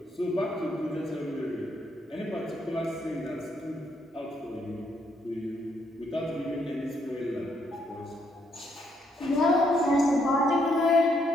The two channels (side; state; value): both; normal; correlation 0.73